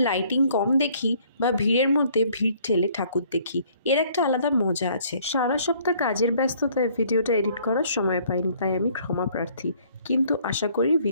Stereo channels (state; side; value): inverted; both; correlation -0.60